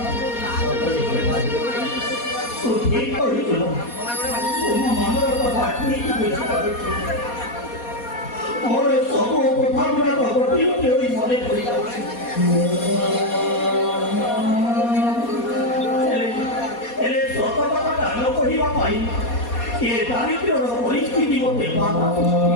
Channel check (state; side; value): late; right; 4.2 ms